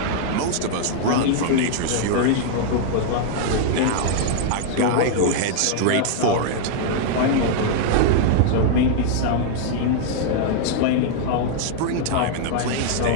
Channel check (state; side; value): different; both; correlation -0.01